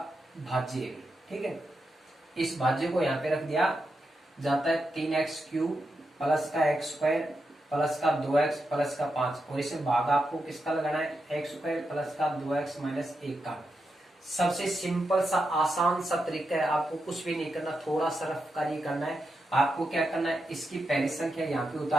भाज्य है। ठीक है, इस भाज्य को यहाँ पे रख दिया जाता है 3x³ प्लस का x² प्लस का 2x प्लस का 5 और इसे भाग आपको किसका लगाना है, x² प्लस का 2x माइनस 1 का। सबसे सिंपल सा आसान सा तरीका है, आपको कुछ भी नहीं करना, थोड़ा सा रफ कार्य करना है। आपको क्या करना है, इसकी पहली संख्या यहाँ पे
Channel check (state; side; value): normal; both; correlation 0.86